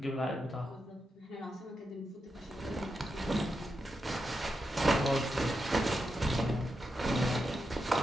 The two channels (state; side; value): normal; both; correlation 0.87